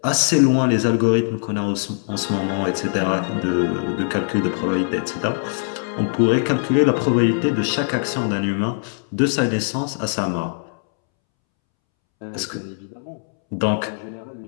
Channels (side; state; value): right; silent; 65 dB below the other